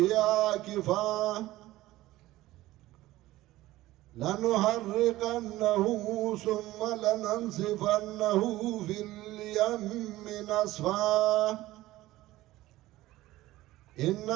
عاكفا لنحرقنه ثم لننسفنه في اليم نسفا.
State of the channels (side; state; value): left; quieter; 16.7 dB